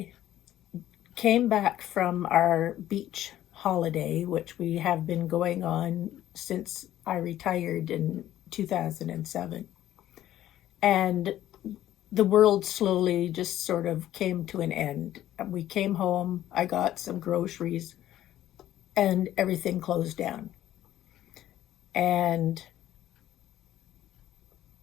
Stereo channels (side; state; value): right; quieter; 12.9 dB